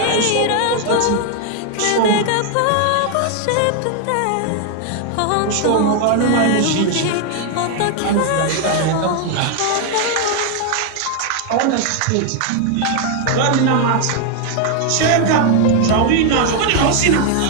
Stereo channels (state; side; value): different; both; correlation 0.00